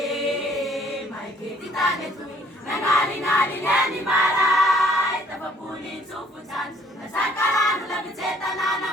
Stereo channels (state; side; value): normal; both; correlation 0.60